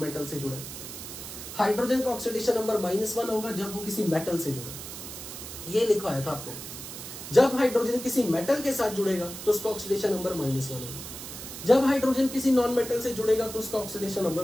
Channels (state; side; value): noise; right; hiss, 10 dB below the sound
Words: मेटल से जुड़े। हाइड्रोजन का ऑक्सीडेशन नंबर -1 होगा जब वो किसी मेटल से जुड़े। ये लिखवाया था आपको। जब हाइड्रोजन किसी मेटल के साथ जुड़ेगा तो उसका ऑक्सीडेशन नंबर -1 होगा। जब हाइड्रोजन किसी नॉन मेटल से जुड़ेगा तो उसका ऑक्सीडेशन नंबर